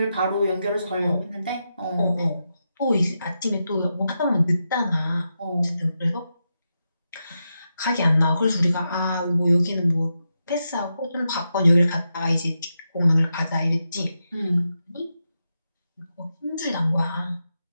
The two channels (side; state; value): both; inverted; correlation -0.87